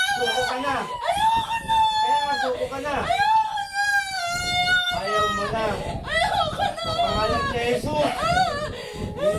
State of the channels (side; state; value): both; identical; correlation 1.00